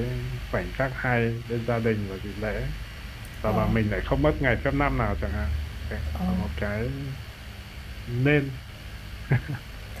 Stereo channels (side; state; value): both; identical; correlation 1.00